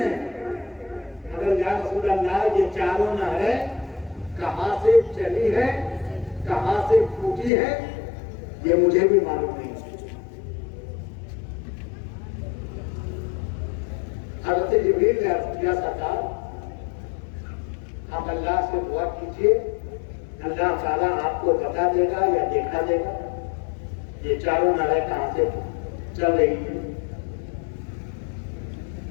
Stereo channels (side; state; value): right; drops out; at 7.5 s